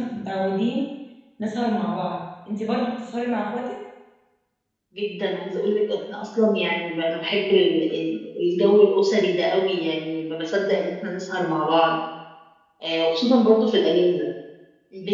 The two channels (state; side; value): identical; both; correlation 1.00